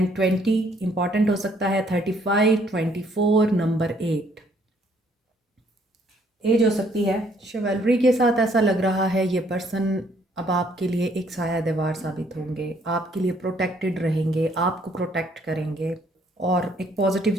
20 इंपॉर्टेंट हो सकता है। 35, 24, नंबर 8 एज हो सकती है। शिवलरी के साथ ऐसा लग रहा है ये पर्सन अब आपके लिए एक साया दीवार साबित होंगे, आपके लिए प्रोटेक्टेड रहेंगे, आपको प्रोटेक्ट करेंगे और एक पॉजिटिव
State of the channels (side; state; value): both; normal; correlation 0.66